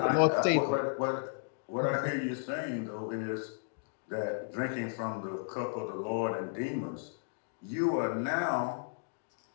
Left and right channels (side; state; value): right; silent; digital silence